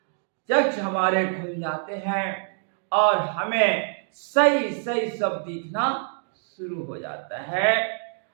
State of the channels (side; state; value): left; silent; digital silence